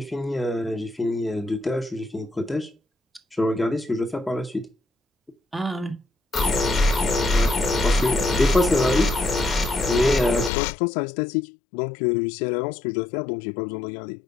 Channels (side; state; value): right; drops out; at 10.5 s